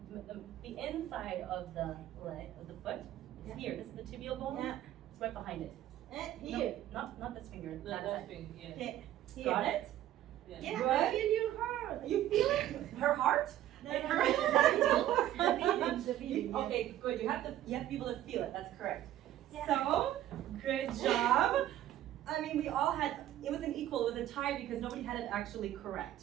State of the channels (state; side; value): quieter; left; 12.9 dB